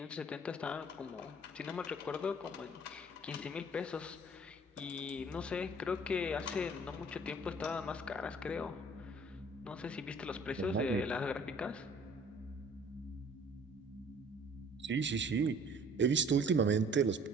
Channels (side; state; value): both; normal; correlation 0.53